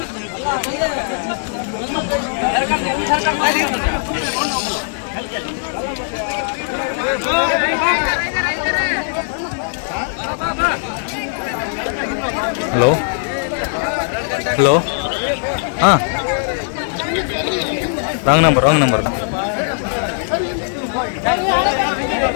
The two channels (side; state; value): right; silent; digital silence